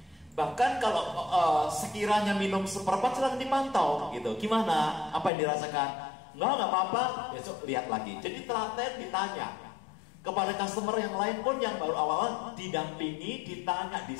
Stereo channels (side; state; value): right; drops out; at 5.3 s